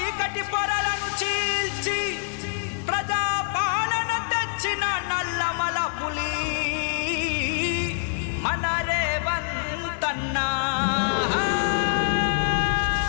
పొరలను చీల్చి ప్రజా పాలన తెచ్చిన నల్లమల పులి మన రేవంతన్నా.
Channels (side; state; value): right; silent; digital silence